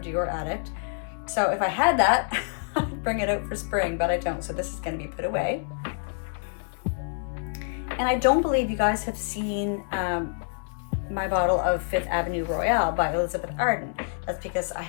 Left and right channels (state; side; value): silent; right; 60 dB below the other